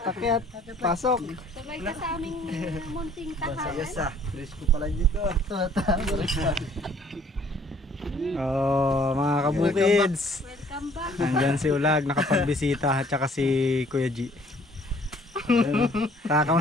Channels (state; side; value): normal; both; correlation 0.58